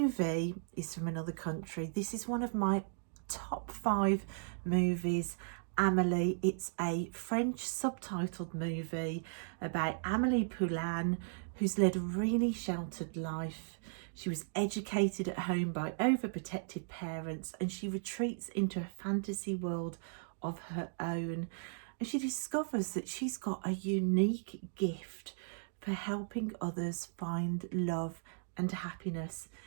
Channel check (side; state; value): left; silent; digital silence